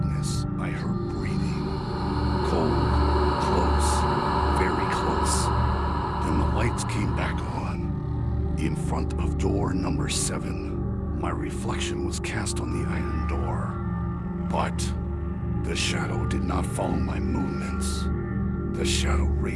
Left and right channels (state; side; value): identical; both; correlation 1.00